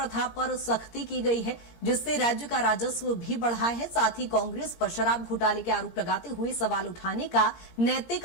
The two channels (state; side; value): late; right; 17 ms